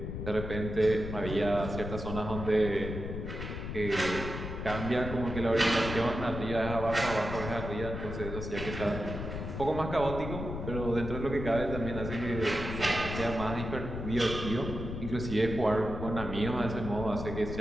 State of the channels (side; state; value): left; noise; rumble, 6 dB below the sound